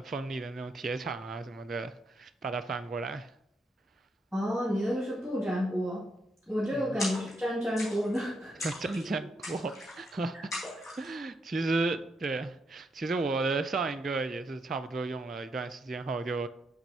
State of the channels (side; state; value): both; normal; correlation 0.79